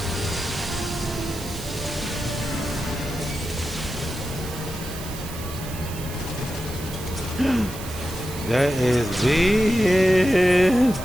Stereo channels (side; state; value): right; noise; hiss, 13 dB below the sound